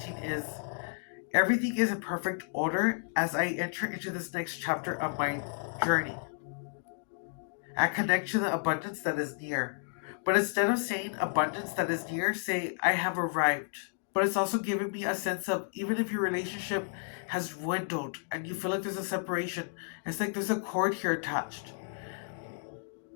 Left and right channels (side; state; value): right; silent; 56 dB below the other